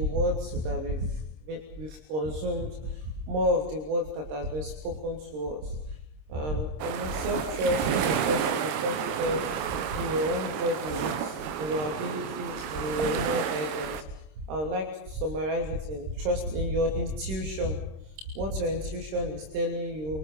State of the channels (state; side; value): late; left; 26 ms